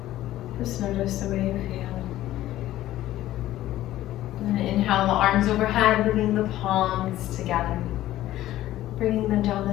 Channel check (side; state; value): right; quieter; 14.4 dB